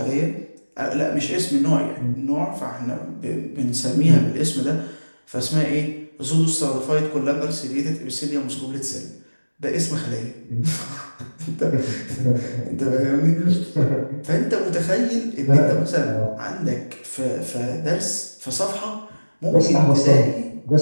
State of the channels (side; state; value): both; inverted; correlation -1.00